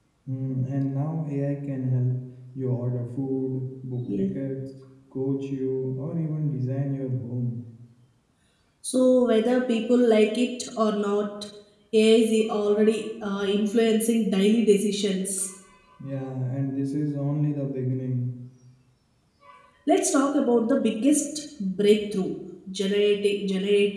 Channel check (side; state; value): both; identical; correlation 1.00